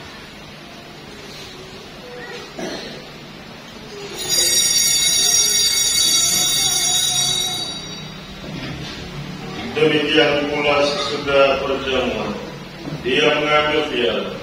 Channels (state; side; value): identical; both; correlation 1.00